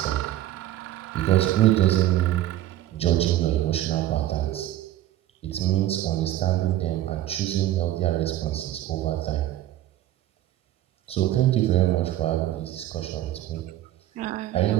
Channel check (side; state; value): left; quieter; 13.7 dB